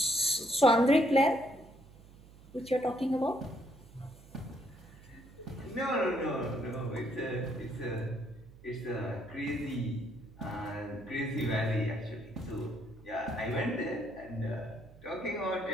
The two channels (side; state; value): right; noise; hum, 21 dB below the sound